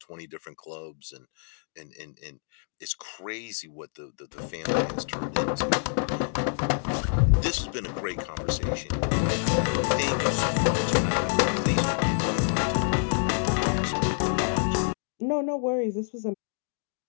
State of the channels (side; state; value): right; silent; digital silence